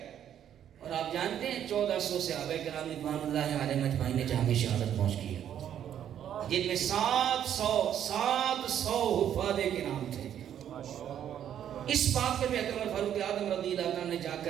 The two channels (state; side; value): quieter; left; 10.0 dB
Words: اور آپ جانتے ہیں 1400 صحابہ کرام رضوان اللہ علیہم اجمعین نے جہاں شہادت پہنچ کی ہے، جن میں 700 حفاظ کرام تھے۔ اس بات پر بھی اکرم فاروق اعظم رضی اللہ عنہ نے جا